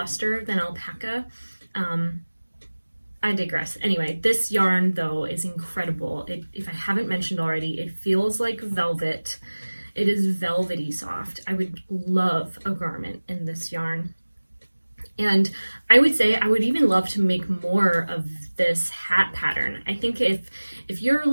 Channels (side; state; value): both; inverted; correlation -1.00